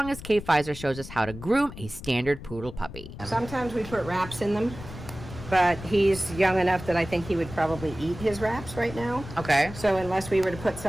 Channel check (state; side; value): noise; left; rumble, 13 dB below the sound